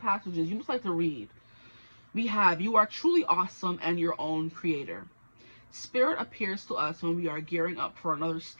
You must like to read. We have, you are truly awesome and your own creator. Spirit appears to us when we are gearing up for another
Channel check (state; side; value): inverted; both; correlation -1.00